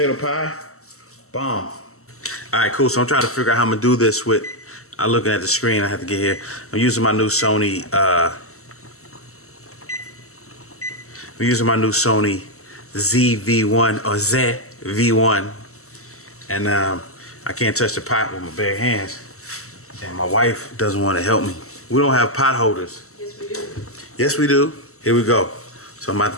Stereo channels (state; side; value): late; right; 0.63 ms